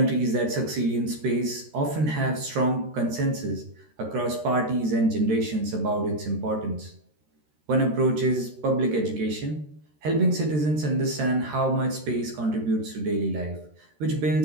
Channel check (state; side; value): late; left; 13 ms